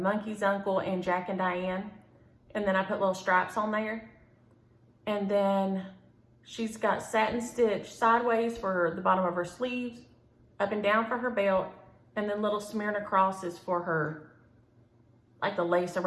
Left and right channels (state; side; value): identical; both; correlation 1.00